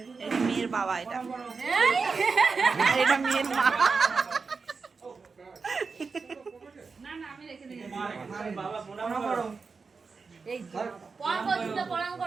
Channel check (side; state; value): left; quieter; 4.7 dB